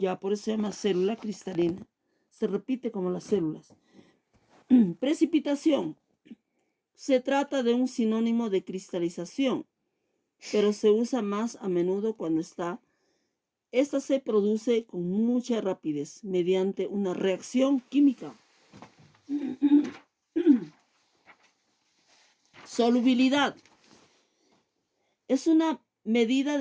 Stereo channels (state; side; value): identical; both; correlation 1.00